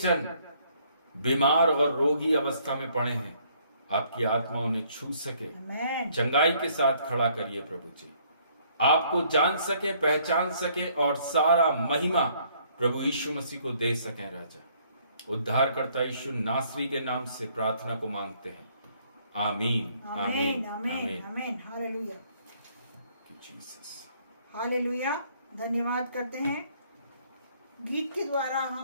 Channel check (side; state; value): both; inverted; correlation -0.64